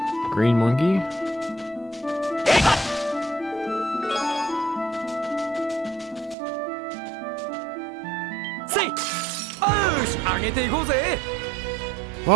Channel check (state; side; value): drops out; left; at 6.4 s